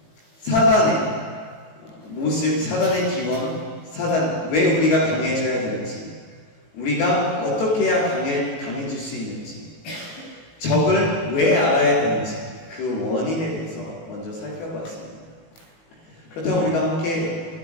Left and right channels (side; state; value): right; late; 18 ms